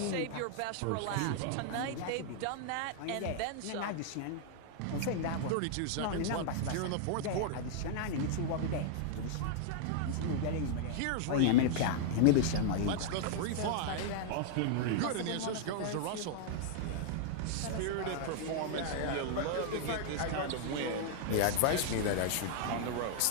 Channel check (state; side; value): different; both; correlation -0.01